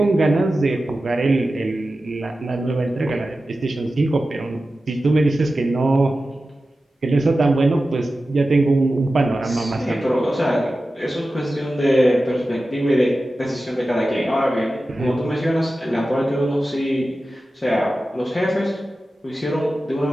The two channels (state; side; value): normal; both; correlation 0.94